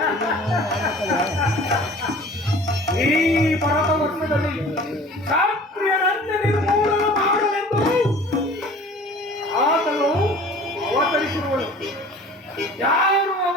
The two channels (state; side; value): normal; both; correlation 0.46